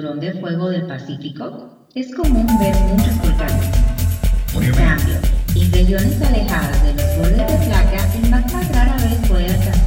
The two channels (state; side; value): identical; both; correlation 1.00